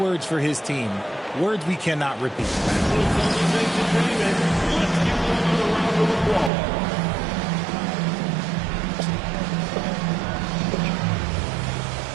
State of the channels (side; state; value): left; drops out; at 6.5 s